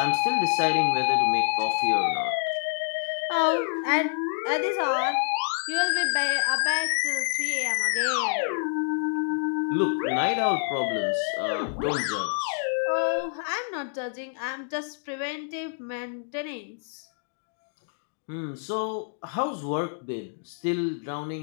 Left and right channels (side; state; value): right; silent; digital silence